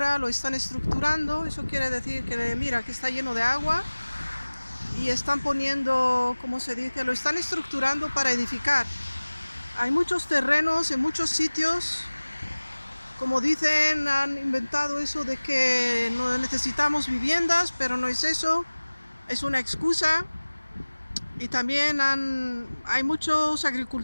lo están estructurando. Eso quiere decir que mira que está lleno de agua y están poniendo, ¿cómo se dice? Lo están estructurando para edificar. Hay muchos terrenos en muchos sitios. Como dicen, han inventado eso de que no necesitamos viviendas, pero no es eso, es una excusa. Y también hay muchos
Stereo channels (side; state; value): both; inverted; correlation -1.00